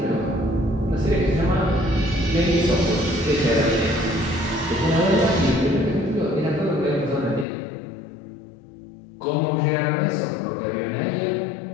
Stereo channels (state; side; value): drops out; right; at 7.5 s